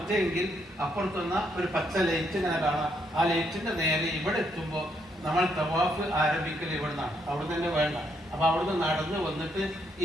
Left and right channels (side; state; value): both; normal; correlation 0.75